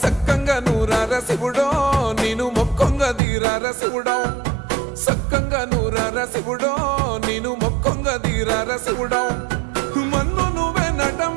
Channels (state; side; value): drops out; left; at 3.2 s